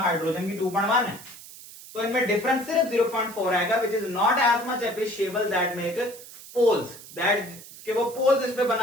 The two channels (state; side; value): noise; right; hiss, 17 dB below the sound